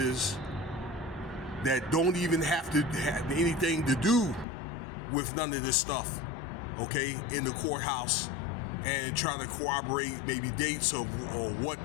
that don't even have to have anything to do with none of this stuff, okay, in the courthouse, and try to corroborate maybe dates or what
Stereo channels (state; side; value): drops out; right; at 4.5 s